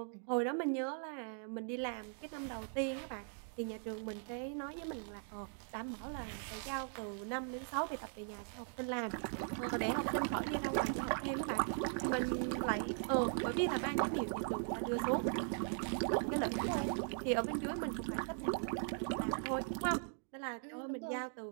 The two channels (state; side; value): silent; left; 51 dB below the other